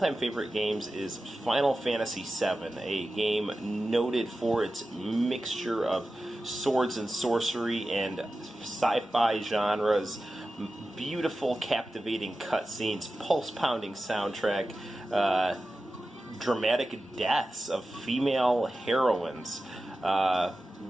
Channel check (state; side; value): normal; both; correlation 0.94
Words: favorite games is Final Fantasy VII, a game noted for its mixture of swords and sorcery and sci-fi genres, beautiful, captivating cutscenes, pulse-pounding soundtrack, dramatic deaths of female heroines.